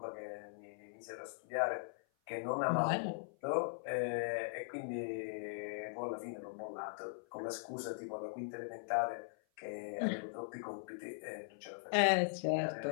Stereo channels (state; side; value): silent; right; 51 dB below the other